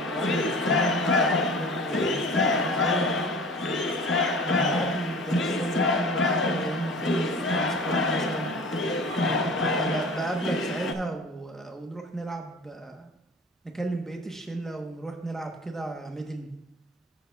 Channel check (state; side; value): normal; both; correlation 0.41